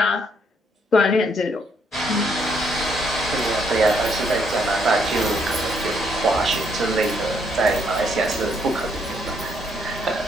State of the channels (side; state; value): both; normal; correlation 0.72